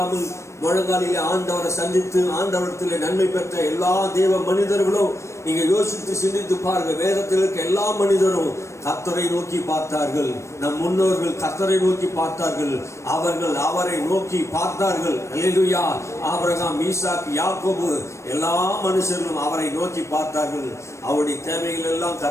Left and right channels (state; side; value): late; right; 0.14 ms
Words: முழங்காலிலே ஆண்டவரை சந்தித்து ஆண்டவரத்திலே நன்மை பெற்ற எல்லா தேவ மனிதர்களும் நீங்க யோசித்து சிந்தித்து பாருங்க. வேதத்தில் இருக்க எல்லா மனிதரும் கர்த்தரை நோக்கி பார்த்தார்கள். நம் முன்னோர்கள் கர்த்தரை நோக்கி பார்த்தார்கள். அவர்கள் அவரை நோக்கி பார்த்தார்கள். அல்லேலூயா. ஆபிரகாம், ஈசாக்கு, யாக்கோபு எல்லா மனுஷர்களும் அவரை நோக்கி பார்த்தார்கள். அவருடைய தேவைகள் எல்லாம்